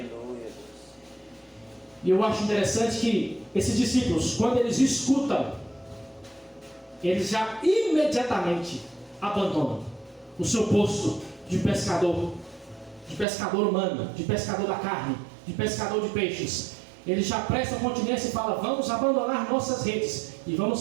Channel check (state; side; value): drops out; left; at 13.2 s